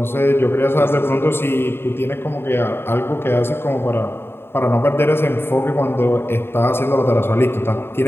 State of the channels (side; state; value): right; late; 0.11 ms